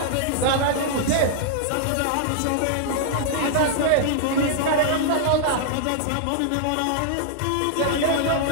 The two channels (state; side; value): different; both; correlation -0.01